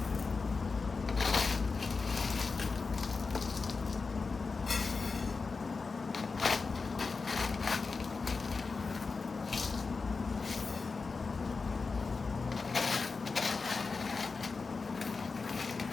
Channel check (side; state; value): right; quieter; 4.4 dB